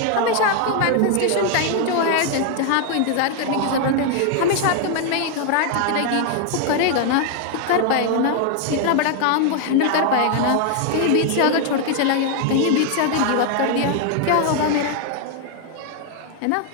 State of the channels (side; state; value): both; different; correlation 0.00